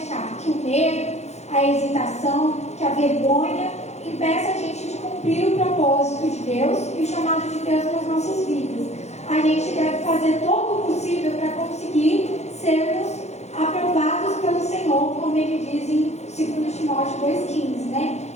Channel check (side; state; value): right; late; 0.32 ms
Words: que o medo, a hesitação, que a vergonha impeça a gente de cumprir o propósito de Deus e o chamado de Deus nas nossas vidas. A gente deve fazer todo o possível para conseguir sermos aprovados pelo Senhor, como ele diz em 2 Timóteo 2,15, né?